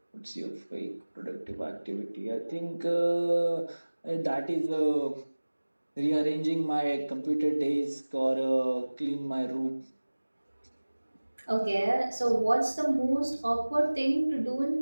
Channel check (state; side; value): inverted; both; correlation -1.00